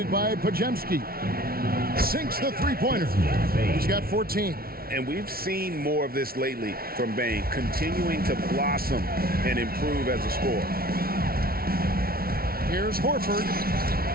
by Podziemski. Sinks the 3-pointer. He's got 14. And we've seen more of this lately from Bain, continuing to blossom and improve as a scorer. Here's Horford.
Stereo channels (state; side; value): late; left; 0.44 ms